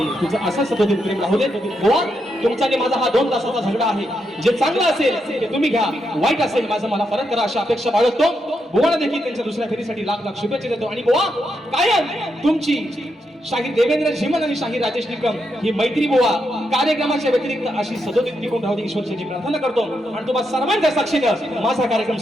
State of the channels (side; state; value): both; normal; correlation 0.82